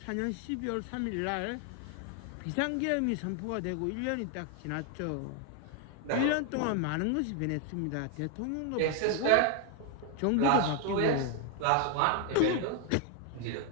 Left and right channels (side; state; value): both; different; correlation 0.00